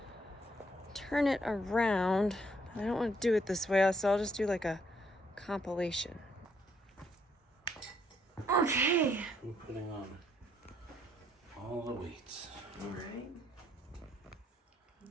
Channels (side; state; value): both; normal; correlation 0.70